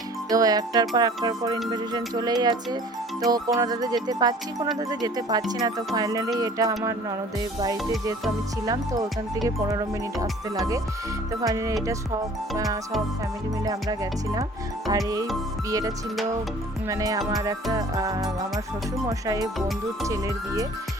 তো একটার পর ইনভিটেশন চলেই আছে। তো কোনোটাতে যেতে পারছি, কোনোটাতে যেতে পারছি না। তো ফাইনালি এটা আমার ননদের বাড়িতে, যেহেতু আমি ছিলাম তো ওখান থেকে 15 মিনিট আসতে লাগে। তো ফাইনালি এটা সব ফ্যামিলি মিলে আমরা গেছিলাম। আর এই বিয়েটা ছিল মানে আমার শ্বশুরমশাইয়ের বন্ধুর ছেলের বিয়ে।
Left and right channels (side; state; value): both; normal; correlation 0.50